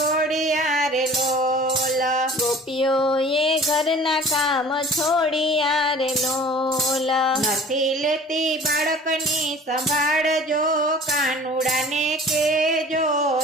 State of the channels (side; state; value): both; normal; correlation 0.46